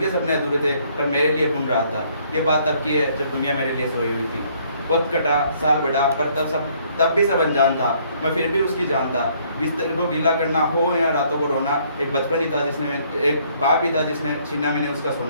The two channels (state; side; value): inverted; both; correlation -0.64